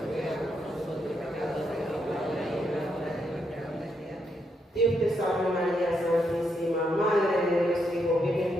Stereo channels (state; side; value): normal; both; correlation 0.79